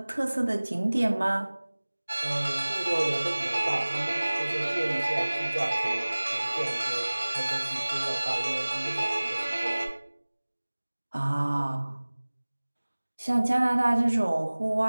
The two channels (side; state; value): both; inverted; correlation -1.00